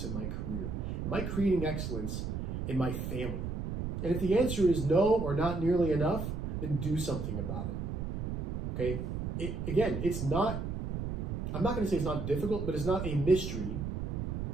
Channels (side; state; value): right; noise; rumble, 3 dB below the sound